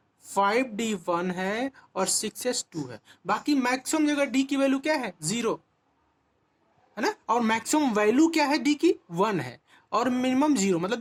5d1 है और 6s2 है। बाकी मैक्सिमम जगह d की वैल्यू क्या है 0 है ना, और मैक्सिमम वैल्यू क्या है d की 1 है, और मिनिमम 0,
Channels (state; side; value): identical; both; correlation 1.00